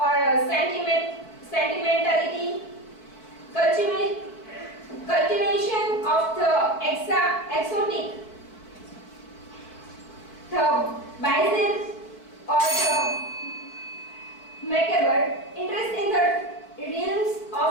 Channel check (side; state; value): right; late; 4.5 ms